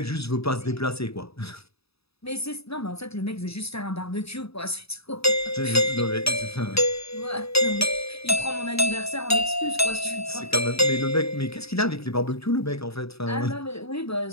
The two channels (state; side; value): late; right; 0.78 ms